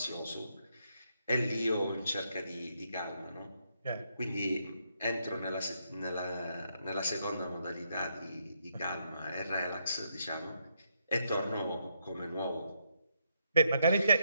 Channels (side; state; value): both; inverted; correlation -0.77